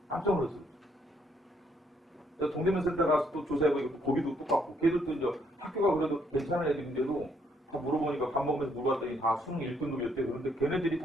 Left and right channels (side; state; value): both; normal; correlation 0.70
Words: 깜짝 놀랐어요 그죠. 내가 동대문 센터 가서 또 조사해 보니까 또 거기도 똑같고 걔들도 이제 학교가 그래도 괜찮은 애들인데도 다 물어보니까 밥 먹으면서 물어봤더니 다 수능 1등급이었대. 그런데 걔네들이